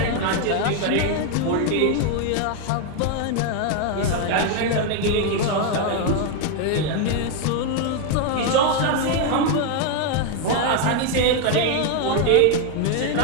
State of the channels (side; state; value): both; different; correlation 0.01